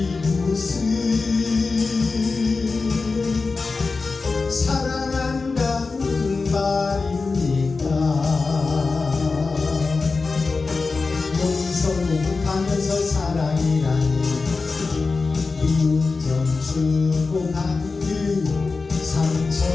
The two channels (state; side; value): quieter; right; 4.1 dB